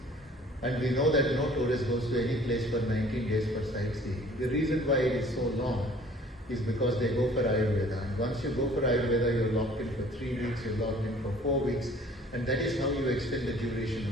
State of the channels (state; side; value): normal; both; correlation 0.52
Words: And we know that no tourist goes to any place for 19 days for sightseeing. The reason why it is so long is because they go for Ayurveda. And once you go for Ayurveda, you're locked in for 3 weeks, you're locked in for 4 weeks, and that is how you extend the duration